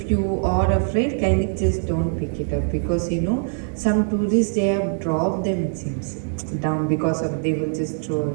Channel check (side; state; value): left; silent; digital silence